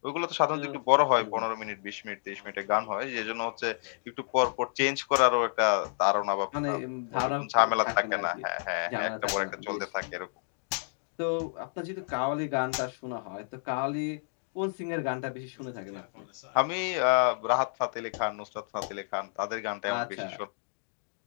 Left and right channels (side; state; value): right; silent; digital silence